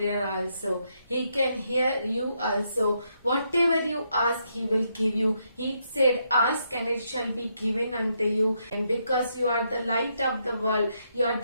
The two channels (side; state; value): both; inverted; correlation -0.78